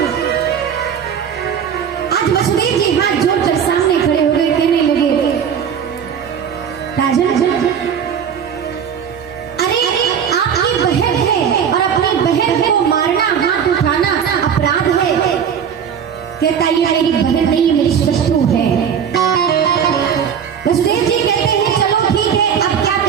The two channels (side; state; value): left; quieter; 7.8 dB